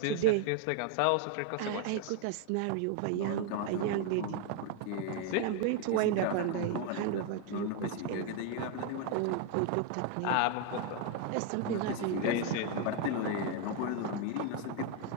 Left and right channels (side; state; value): both; different; correlation 0.00